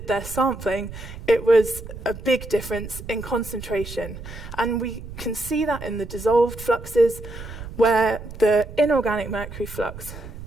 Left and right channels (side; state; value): right; noise; rumble, 12 dB below the sound